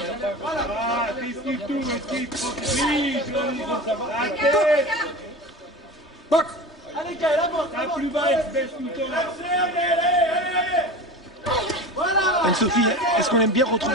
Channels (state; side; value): normal; both; correlation 0.31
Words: Ah, esquive tout, esquive. Oui, joli. La tête. Box. Allez, calme, avance. La plus bas, elle se baisse tout le temps. Voilà. Anne-Sophie, est-ce qu'on aime bien